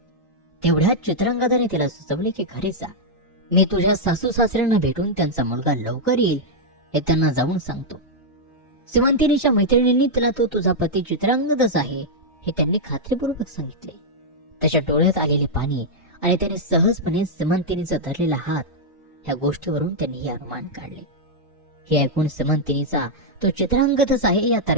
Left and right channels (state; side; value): normal; both; correlation -0.04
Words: तेवढ्यात चित्रांगदाने तिला सुचवले की घरी जा, मी तुझ्या सासू सासऱ्यांना भेटून त्यांचा मुलगा लवकर येईल हे त्यांना जाऊन सांगतो. सिमंतिनीच्या मैत्रिणींनी तिला तो तुझा पती चित्रांगदच आहे हे त्यांनी खात्रीपूर्वक सांगितले. त्याच्या डोळ्यात आलेले पाणी आणि त्याने सहजपणे सिमंतिनीचा धरलेला हात, ह्या गोष्टीवरून त्यांनी हे अनुमान काढले. हे ऐकून सिमंतिनीचा तो चित्रांगदच आहे या